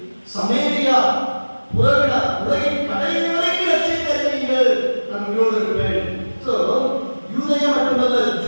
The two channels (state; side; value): inverted; both; correlation -1.00